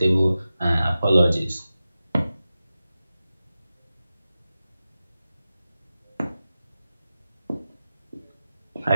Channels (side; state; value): both; inverted; correlation -0.93